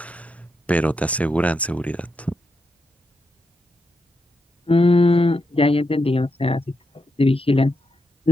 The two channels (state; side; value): normal; both; correlation 0.84